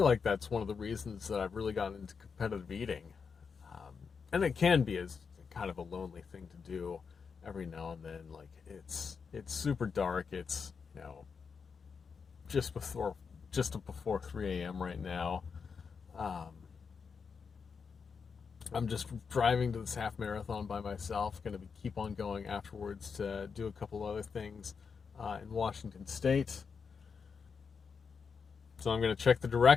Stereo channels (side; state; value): right; quieter; 5.7 dB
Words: like that's one of the reasons that I've really gotten into competitive eating. And it can be as kind of a lonely thing to do every now and then. Like it's super dark. It's just before 3 a.m. right now. I'm just driving to this half marathon by myself. Going to keep on going afterwards to do a couple other things in Washington State. So I'm going to check the